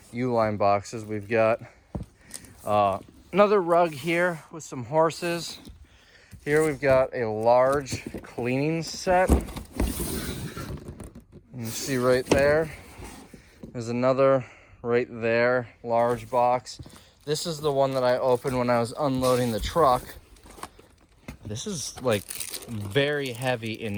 U-line boxes. We've got another rug here with some horses. Here we've got a large cleaning set. You can see right there. There's another right there, large box. This is the one that I opened when I was unloading the truck. This is like very heavy in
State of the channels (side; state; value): both; identical; correlation 1.00